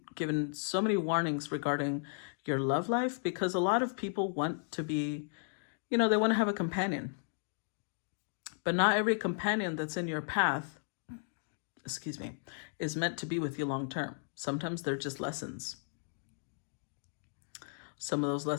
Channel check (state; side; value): silent; right; digital silence